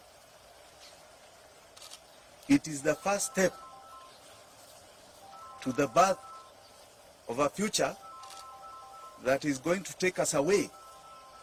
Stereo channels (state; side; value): identical; both; correlation 1.00